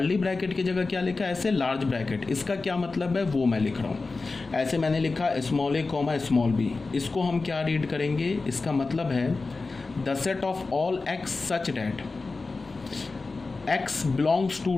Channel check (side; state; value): right; quieter; 3.8 dB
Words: ब्रैकेट की जगह क्या लिखा है, ऐसे लार्ज ब्रैकेट। इसका क्या मतलब है वो मैं लिख रहा हूँ। ऐसे मैंने लिखा small a comma small b, इसको हम क्या रीड करेंगे, इसका मतलब है the set of all x such that x belongs to